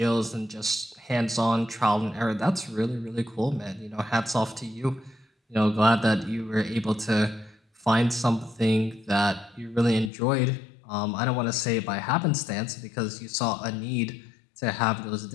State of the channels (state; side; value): drops out; right; at 10.1 s